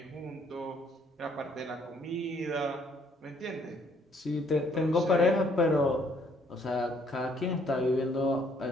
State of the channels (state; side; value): normal; both; correlation 0.65